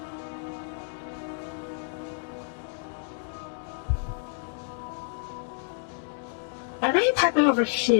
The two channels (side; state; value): right; silent; 59 dB below the other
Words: I may pipe it over